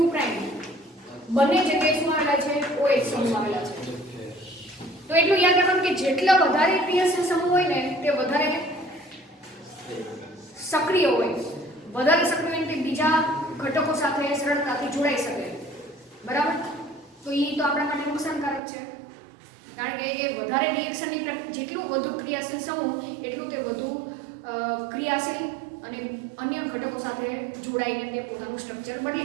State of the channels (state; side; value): drops out; left; at 18.6 s